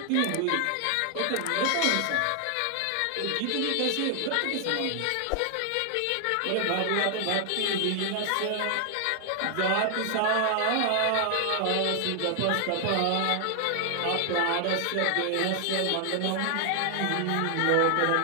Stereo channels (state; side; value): different; both; correlation 0.00